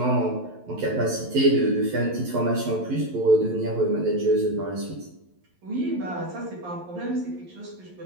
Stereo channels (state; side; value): late; left; 11 ms